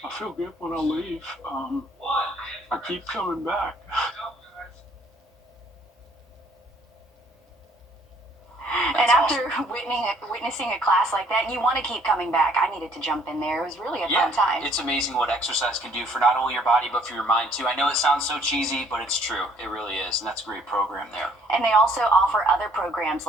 I feel good when I leave. I keep coming back. And after witnessing a class like that, you want to keep coming back. I needed to jump in there. It was really a fun time. It's amazing what exercise can do for not only your body, but for your mind, too. I know it sounds so cheesy, but it's true. It really is, and that's a great program there. And they also offer other programs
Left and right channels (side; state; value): both; normal; correlation 0.62